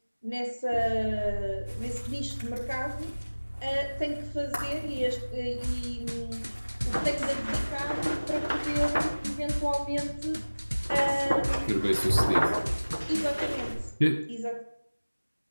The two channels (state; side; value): inverted; both; correlation -1.00